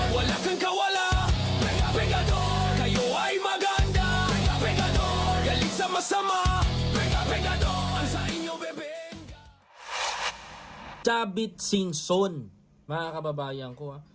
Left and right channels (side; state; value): both; identical; correlation 1.00